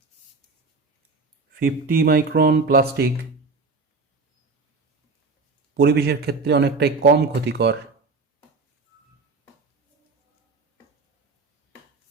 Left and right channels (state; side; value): quieter; left; 4.1 dB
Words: 50 মাইক্রন প্লাস্টিক পরিবেশের ক্ষেত্রে অনেকটাই কম ক্ষতিকর।